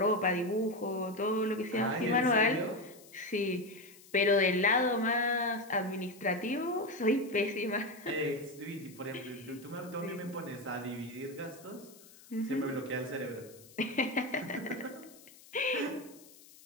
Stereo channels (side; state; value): left; noise; hiss, 22 dB below the sound